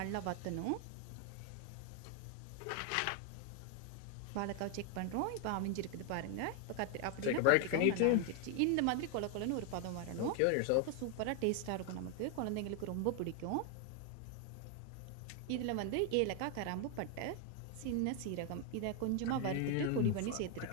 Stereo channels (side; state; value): both; different; correlation 0.01